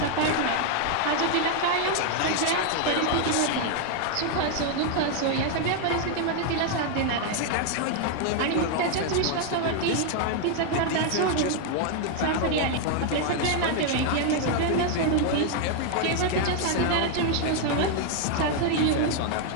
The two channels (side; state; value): both; different; correlation 0.00